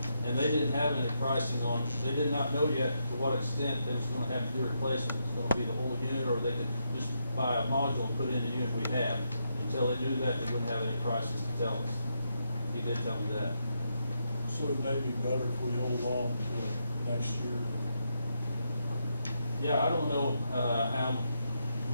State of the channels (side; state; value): both; inverted; correlation -0.81